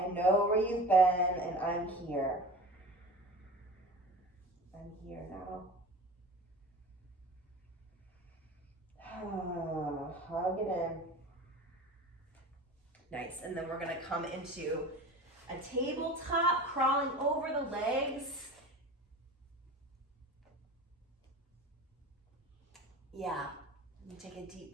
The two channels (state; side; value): normal; both; correlation 0.36